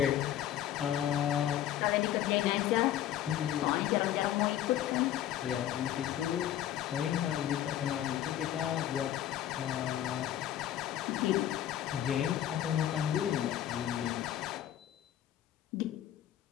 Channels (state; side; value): quieter; right; 11.8 dB